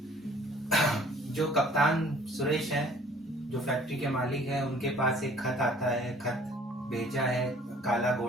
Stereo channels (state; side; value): normal; both; correlation 0.55